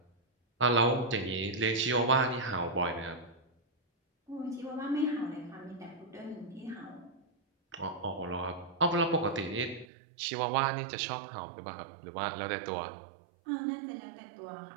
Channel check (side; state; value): left; drops out; at 9.9 s